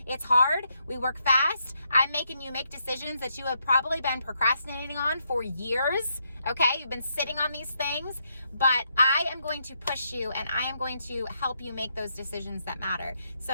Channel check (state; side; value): inverted; both; correlation -0.78